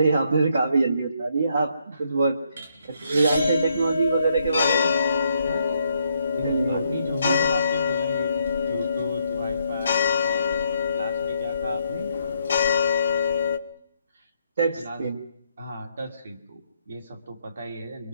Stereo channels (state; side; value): inverted; both; correlation -0.74